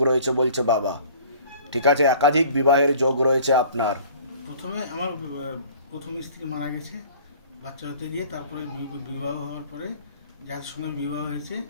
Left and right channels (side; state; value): both; inverted; correlation -0.50